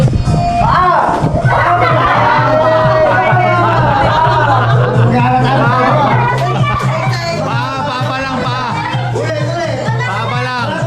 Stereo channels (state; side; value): identical; both; correlation 1.00